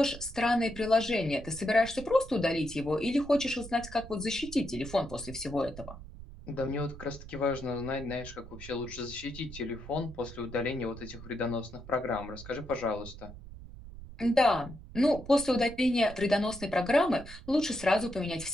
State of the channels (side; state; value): right; noise; rumble, 14 dB below the sound